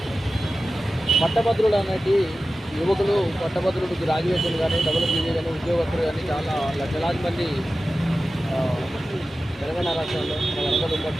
పట్టభద్రులు అనేటి యువకులు పట్టభద్రులు గ్రాడ్యుయేట్లు కానీ డబ్ల్యూపీజీ కానీ ఉద్యోగస్తులు కానీ చాలా లక్షలాది మంది తెలంగాణ రాష్ట్రంలో మన వరంగల్ ఉమ్మడి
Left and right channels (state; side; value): normal; both; correlation 0.94